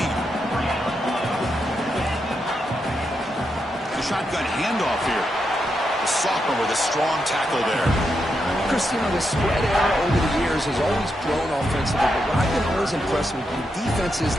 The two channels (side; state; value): both; normal; correlation 0.83